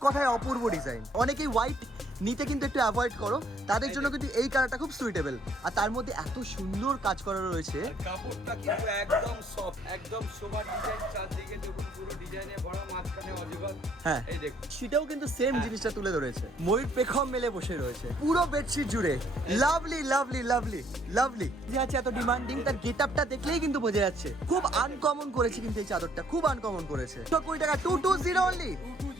কথায় অপূর্ব ডিজাইন। অনেকেই হোয়াইট নিতে কিন্তু একটু অ্যাভয়েড করো, তাদের জন্য কিন্তু এই কালারটা খুব সুইটেবল। আর তার মধ্যে এত সুন্দর কাজ করা রয়েছে, কাপড়টা কিন্তু একদম সফট, একদম সোবার ডিজাইন, চারদিকে দেখুন পুরো ডিজাইনে ভরা, মাঝখানে অজগর। হ্যাঁ এই দেখুন, সেটাও কিন্তু সেম জিনিসটা তুলে ধরেছে। ময়ূর পেখম মেলে বসে রয়েছে পুরো বেডশিট জুড়ে। লাভলি লাভলি লাভলি লাভলি যে আছে এত ডিমান্ডিং, তার গেটআপটা দেখলেই কিন্তু বোঝা যাচ্ছে। খুব আনকমন করেছে কিন্তু এই চাদরটা, খুব আনকমন করেছে। 20 টাকা 220 অনলি।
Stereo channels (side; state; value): both; normal; correlation 0.65